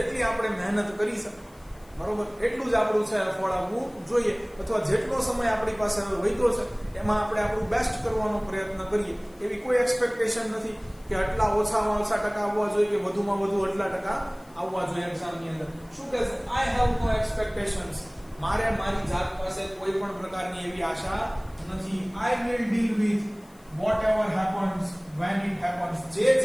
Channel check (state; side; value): noise; left; hiss, 28 dB below the sound